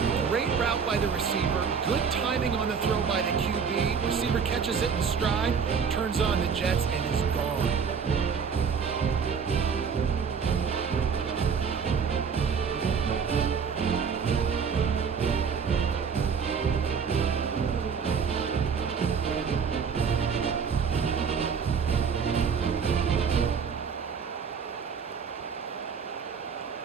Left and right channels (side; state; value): left; quieter; 6.2 dB